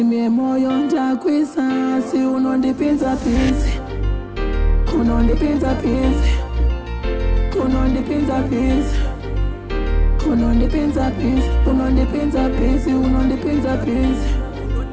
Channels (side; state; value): both; identical; correlation 1.00